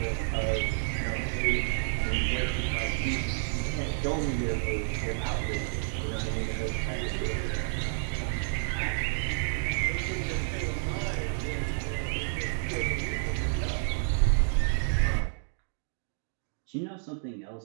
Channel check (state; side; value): silent; left; digital silence